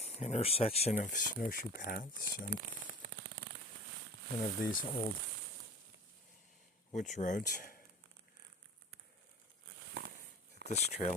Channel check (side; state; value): both; normal; correlation 0.38